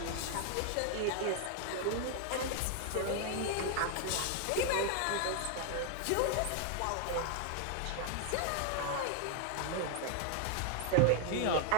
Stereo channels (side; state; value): both; different; correlation 0.00